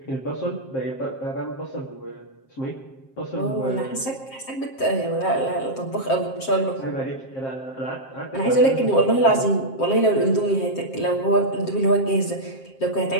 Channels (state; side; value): late; right; 7.6 ms